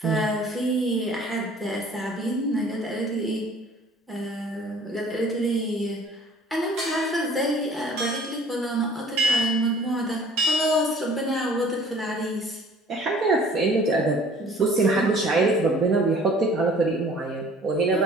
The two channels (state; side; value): normal; both; correlation 0.52